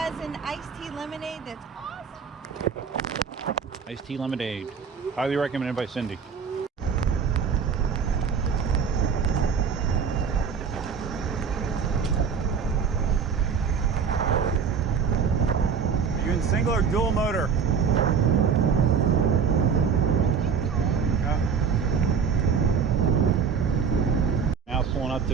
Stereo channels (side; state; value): left; quieter; 6.4 dB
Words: an iced tea lemonade that's awesome. Iced tea lemonade. Highly recommended by Cindy. Are you in single or dual motor? Now pulling up